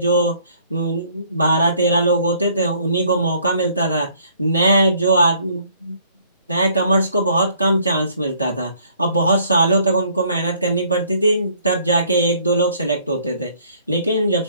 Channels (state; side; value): inverted; both; correlation -0.61